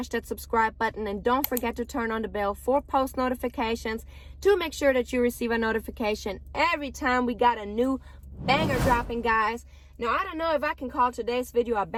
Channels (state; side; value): identical; both; correlation 1.00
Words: that subscribe button and don't forget to turn on the bell for post notifications to make sure that you receive a notification every time we got a new banger dropping, guys. Now, I don't know if I can call today's video a